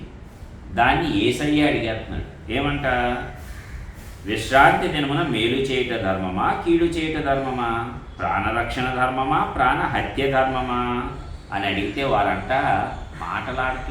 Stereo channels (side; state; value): both; identical; correlation 1.00